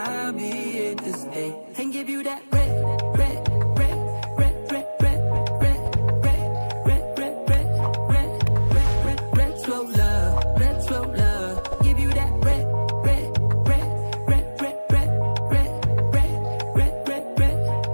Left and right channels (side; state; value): both; inverted; correlation -1.00